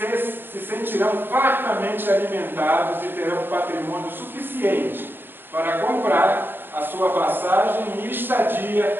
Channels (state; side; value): late; left; 0.10 ms